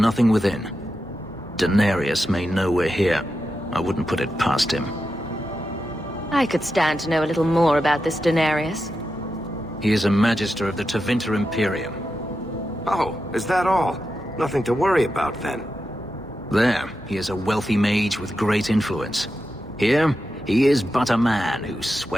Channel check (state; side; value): normal; both; correlation 0.89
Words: within. Daenerys may know we're here. I wouldn't put it past him. I could stand to know a little more about this Daenerys. He is a Magister of the Tevinter Imperium. Oh, is that all? Nothing to worry about then. There, he is a wealthy mage with great influence. Here, he is but a man who